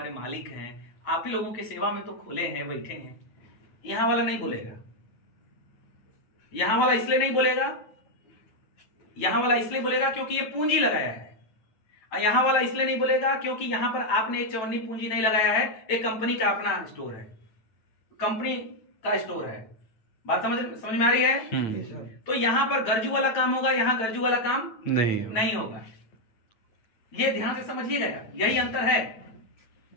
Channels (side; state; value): right; late; 9.1 ms